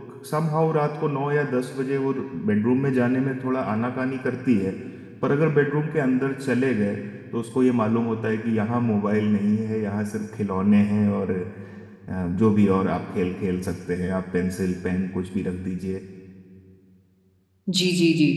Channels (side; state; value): both; identical; correlation 1.00